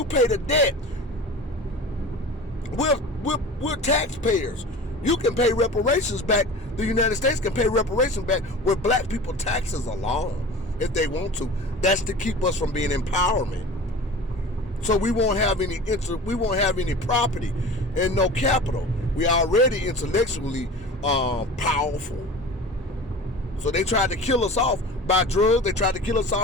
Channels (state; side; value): normal; both; correlation 0.37